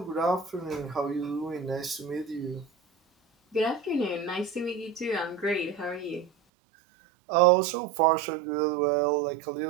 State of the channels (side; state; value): left; drops out; at 6.3 s